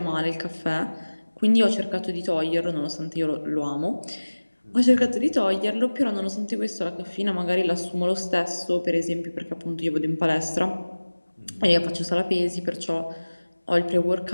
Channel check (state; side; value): inverted; both; correlation -1.00